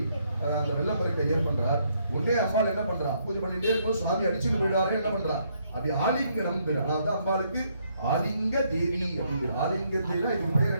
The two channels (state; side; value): inverted; both; correlation -0.72